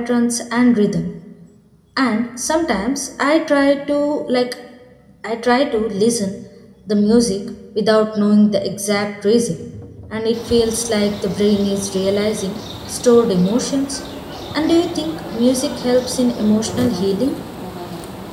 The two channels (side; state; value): both; identical; correlation 1.00